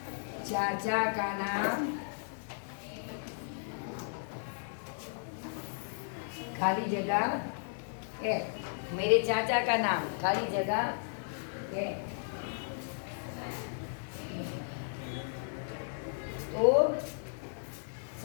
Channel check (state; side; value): silent; right; 55 dB below the other